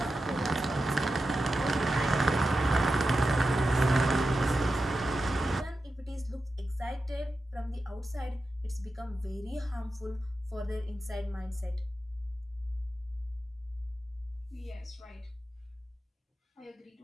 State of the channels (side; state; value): both; normal; correlation 0.91